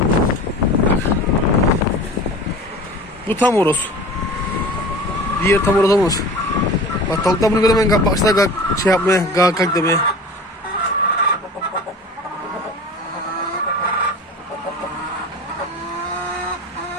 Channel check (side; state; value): both; normal; correlation 0.37